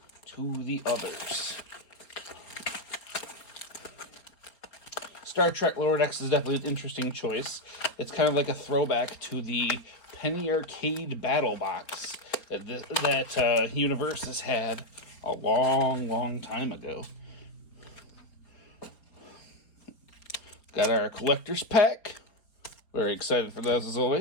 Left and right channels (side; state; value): right; late; 4.3 ms